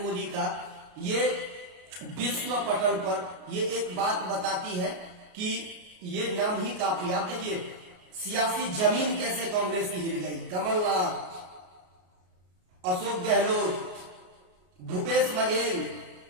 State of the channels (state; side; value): late; left; 33 ms